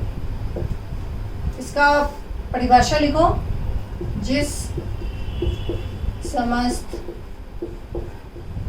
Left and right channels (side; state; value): both; identical; correlation 1.00